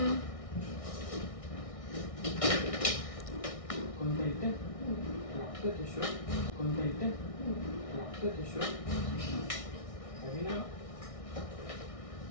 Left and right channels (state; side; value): late; right; 1.6 ms